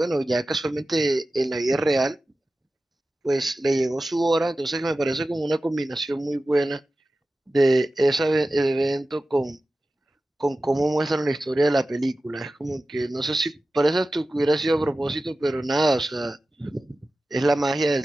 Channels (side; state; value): both; normal; correlation 0.95